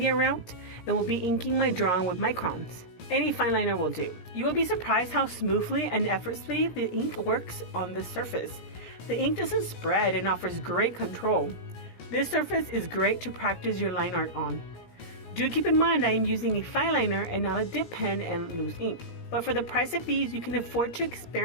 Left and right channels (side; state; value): right; late; 17 ms